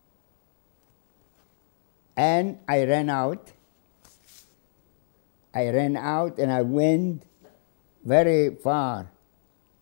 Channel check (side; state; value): right; silent; digital silence